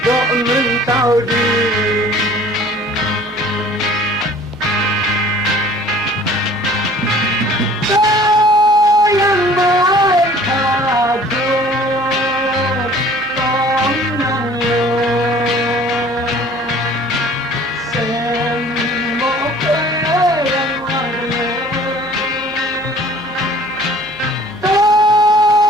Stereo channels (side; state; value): both; normal; correlation 0.50